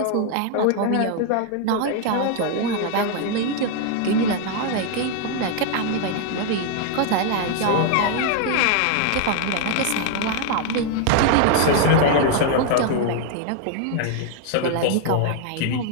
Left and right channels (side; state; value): both; different; correlation 0.00